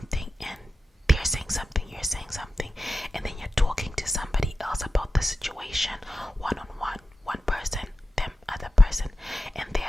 and they're saying something, you're saying something, and then you're talking to somebody else about the situation, one-on-one, one person, them other person, and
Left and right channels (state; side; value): normal; both; correlation 0.93